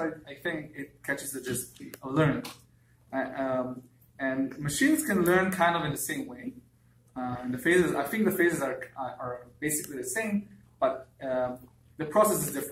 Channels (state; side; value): identical; both; correlation 1.00